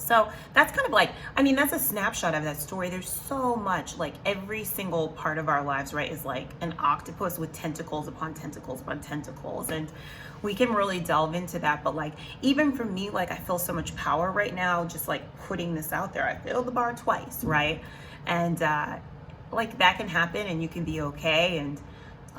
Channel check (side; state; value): both; identical; correlation 1.00